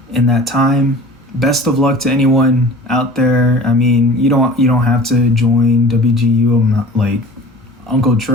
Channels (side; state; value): both; normal; correlation 0.42